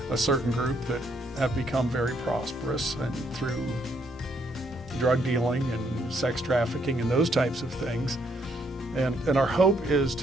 a certain group that have become very prosperous and through drug dealing and sex trafficking and those types of things. And our hope is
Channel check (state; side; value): normal; both; correlation 0.72